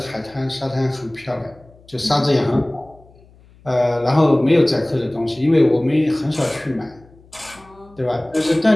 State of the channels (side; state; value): left; noise; hum, 27 dB below the sound